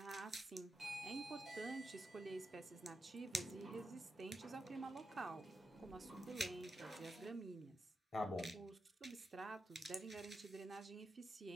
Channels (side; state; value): both; normal; correlation 0.87